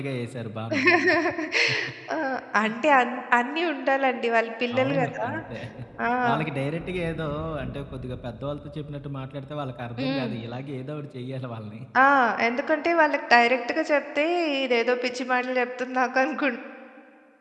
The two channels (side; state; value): both; identical; correlation 1.00